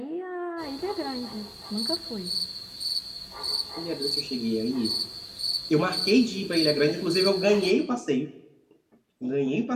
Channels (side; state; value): both; identical; correlation 1.00